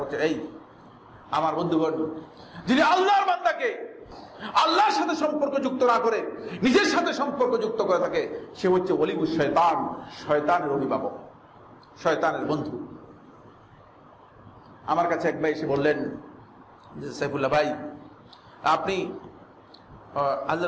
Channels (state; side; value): identical; both; correlation 1.00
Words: হচ্ছে এই, আমার বন্ধুগণ, যিনি আল্লাহর বান্দাকে আল্লাহর সাথে সম্পর্ক যুক্ত না করে নিজের সাথে সম্পর্ক যুক্ত করে থাকে, সে হচ্ছে ওলিউশ শয়তান, শয়তানের অভিভাবক, শয়তানের বন্ধু। আমার কাছে এক ভাই এসে বললেন যে সাইফুল্লাহ ভাই, আপনি